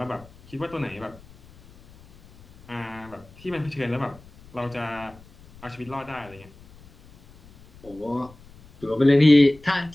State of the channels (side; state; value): left; noise; rumble, 24 dB below the sound